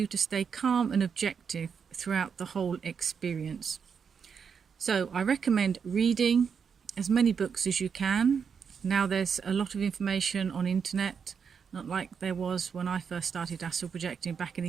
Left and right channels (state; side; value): quieter; left; 6.5 dB